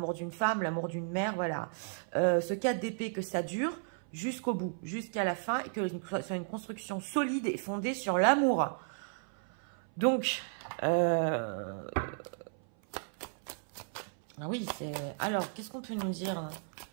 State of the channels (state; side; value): silent; left; 55 dB below the other